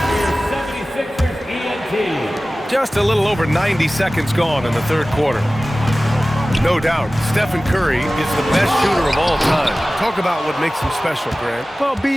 Just a little over 90 seconds gone in the third quarter. No doubt, Stephen Curry is the best shooter of all time. Talk about what makes him special, Grant. Well,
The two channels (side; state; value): both; normal; correlation 0.97